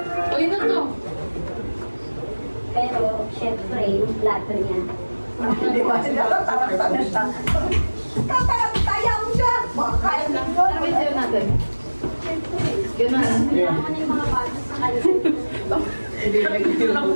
Uy, na to. Pero, syempre, yung plato niya. Hindi ba? Tataranta na siya. Tatarantaya mo siya. Makakaya na Ano ba yung sayaw natin? Ganun. Yeah. Ano yung mga bata sa kanya?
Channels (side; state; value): both; inverted; correlation -1.00